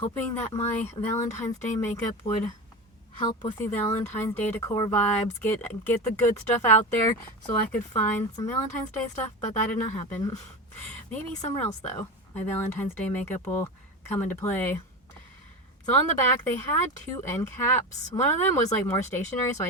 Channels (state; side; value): normal; both; correlation 0.23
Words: that my Valentine's Day makeup would help with the Valentine's Day decor vibes, get the good stuff out there so I could find some Valentine's Day stuff, but that did not happen. Maybe somewhere else though. My Valentine's Day makeup will come into play. So on the back, they had two end caps. One of them was like more stationary, so I